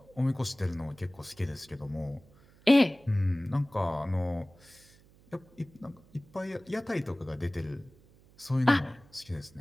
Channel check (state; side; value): noise; right; hum, 27 dB below the sound